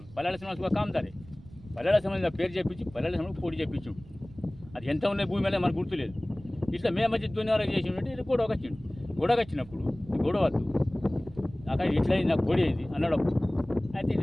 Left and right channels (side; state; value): right; noise; rumble, 20 dB below the sound